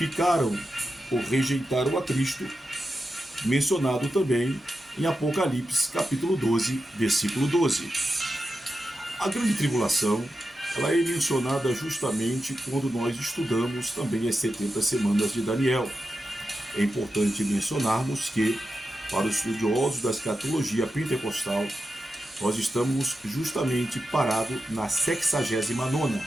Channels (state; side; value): normal; both; correlation 0.90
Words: ou rejeitaram a Cristo, mencionado também em Apocalipse, capítulo 12, versículo 12. A grande tribulação, ela é mencionada justamente quando nós estudamos também as 70 semanas de Daniel. É importante mencionarmos que, para os estudiosos da escatologia pentecostal, nós estamos justamente parados na 69ª